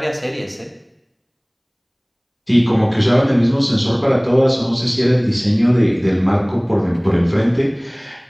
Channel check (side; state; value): both; identical; correlation 1.00